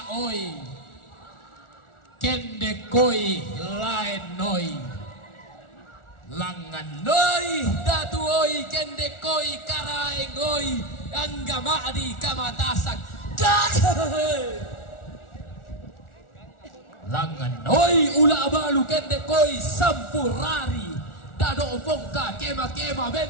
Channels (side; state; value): right; late; 1.4 ms